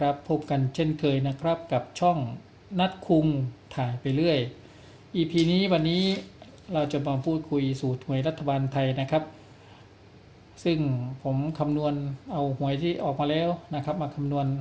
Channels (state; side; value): identical; both; correlation 1.00